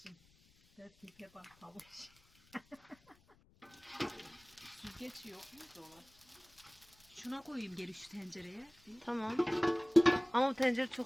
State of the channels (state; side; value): noise; left; rumble, 30 dB below the sound